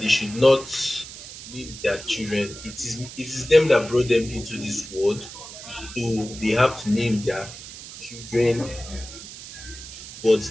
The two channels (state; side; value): noise; right; hiss, 13 dB below the sound